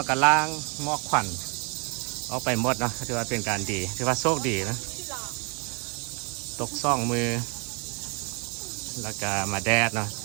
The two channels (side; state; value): left; quieter; 34.2 dB